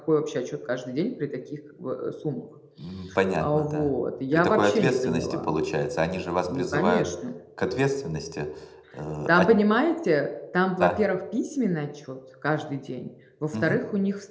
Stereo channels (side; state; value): both; identical; correlation 1.00